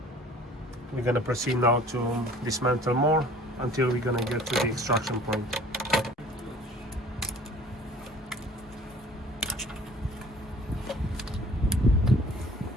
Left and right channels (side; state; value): both; normal; correlation 0.50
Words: We're going to proceed now to dismantle more until we're going to get to the extraction point.